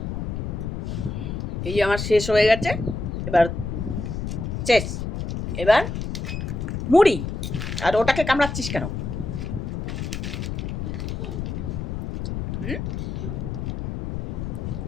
এই যে আমার শেষ হয়ে গেছে, এবার শেষ। এবার মুড়ি। আর ওটাকে কামড়াচ্ছিস কেন? হুম,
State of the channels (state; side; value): noise; left; rumble, 4 dB below the sound